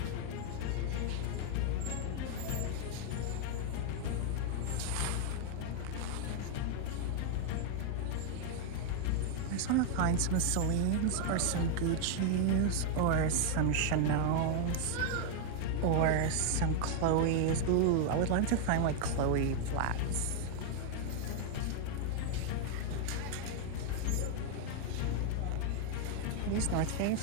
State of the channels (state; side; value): different; both; correlation 0.00